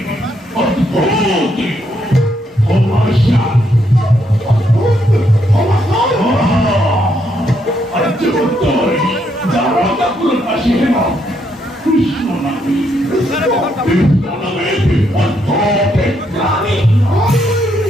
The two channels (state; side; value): normal; both; correlation 0.75